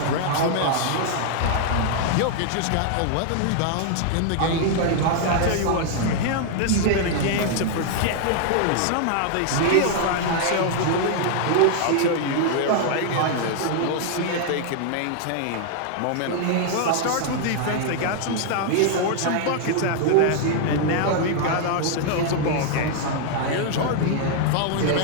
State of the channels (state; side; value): different; both; correlation 0.00